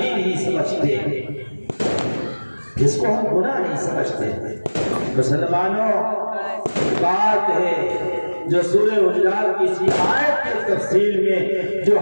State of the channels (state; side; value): inverted; both; correlation -1.00